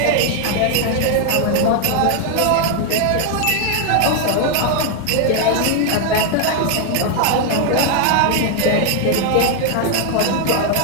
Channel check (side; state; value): both; different; correlation 0.00